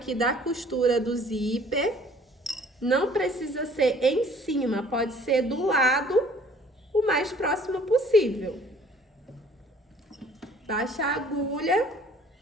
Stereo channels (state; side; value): normal; both; correlation 0.55